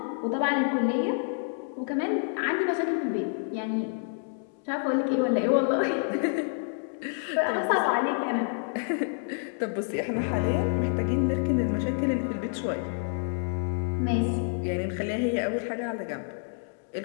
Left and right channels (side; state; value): right; silent; 59 dB below the other